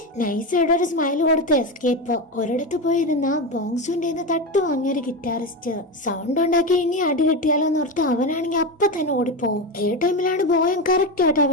നൈസായിട്ട് ഒരു സ്മൈൽ കൊടുത്ത് എസ്കേപ്പ്. ഒരിടത്ത് പോയിരുന്ന ബോങ്സുവിന്റെ തട്ട് വാങ്ങിയൊരു ഗിറ്റാറിസ്റ്റ് സൗണ്ട് ഉണ്ടാക്കി ഇനി അടി കിട്ടിയാലോ എന്നോർത്ത് അവനാണെങ്കിൽ അപ്പൊ തന്നെ ഓടിപ്പോവും. ഈ ടൈമിലാണ് ബോയം കറക്റ്റ് ആയിട്ട് ആ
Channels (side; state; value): both; normal; correlation 0.17